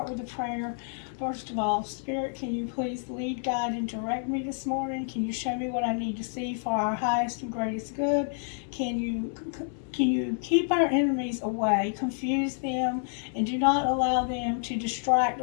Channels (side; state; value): right; silent; 58 dB below the other